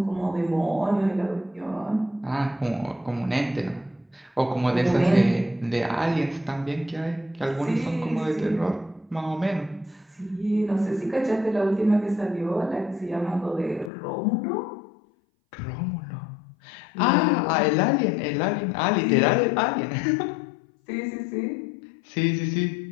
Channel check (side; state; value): right; drops out; at 13.9 s